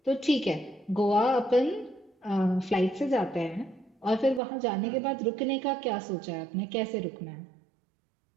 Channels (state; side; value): drops out; left; at 4.4 s